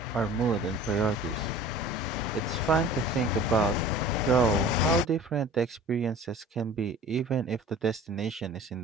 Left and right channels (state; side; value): normal; both; correlation 0.43